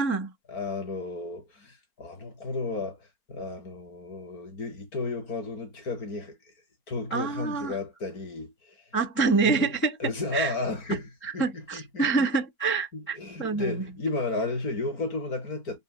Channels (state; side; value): late; right; 4.4 ms